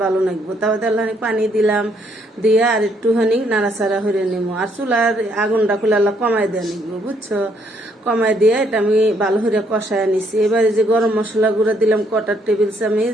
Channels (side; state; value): both; normal; correlation 0.70